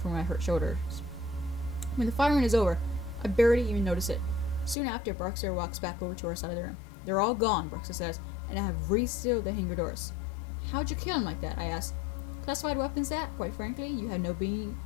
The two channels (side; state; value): right; drops out; at 4.8 s